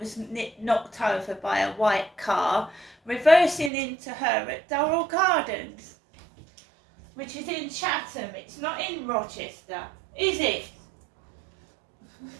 knocked over by a white car reversing into her at Durrell Gardens, which is in Chatham. It's not in Rochester, is it?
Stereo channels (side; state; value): left; drops out; at 3.7 s